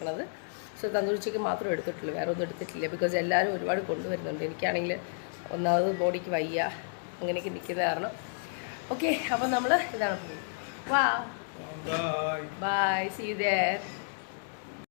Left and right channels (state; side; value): silent; right; digital silence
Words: സോ തന്തൂരി ചിക്കൻ മാത്രം എടുത്തിട്ടുള്ളൂ, വേറെ ഒന്നും എടുത്തിട്ടില്ല. ബിക്കോസ് എല്ലാവരും ഒരുപാട് കൊണ്ടുവരുന്നുണ്ട്. എനിക്കാണെങ്കിൽ ഒന്നാമത് ബോഡിക്ക് വയ്യ, അങ്ങനെയൊക്കെ നിൽക്കുന്ന കാരണം. ഓക്കെ, അപ്പോൾ നമ്മൾ ഇതാണ് പോകുന്നത്. വാ, ബൈ, സീ യു ദേർ.